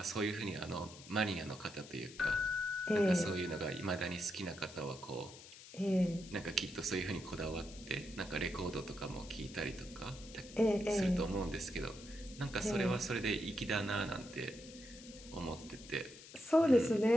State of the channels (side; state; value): left; noise; hiss, 17 dB below the sound